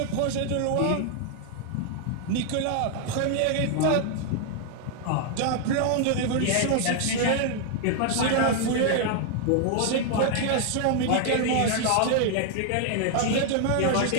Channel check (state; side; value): different; both; correlation 0.00